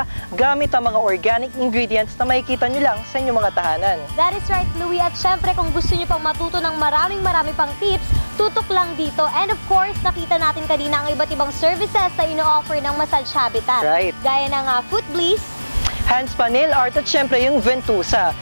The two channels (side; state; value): both; inverted; correlation -1.00